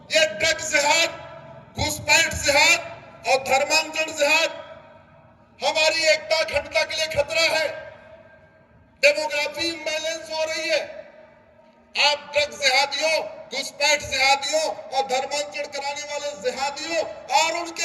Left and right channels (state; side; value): identical; both; correlation 1.00